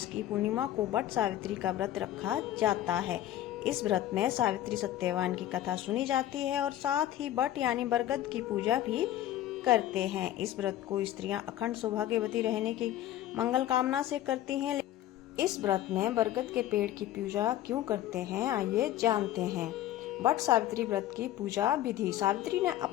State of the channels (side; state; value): right; quieter; 13.0 dB